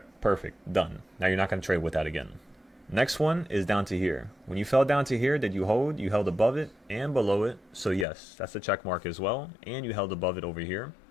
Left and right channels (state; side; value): drops out; right; at 8.1 s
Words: perfect, done. Now you're not going to trade with that again. Next one is down to here. When you fell down to here, did you hold? You held above it and below it. So yes, that's a check mark as well. And you held above it over here.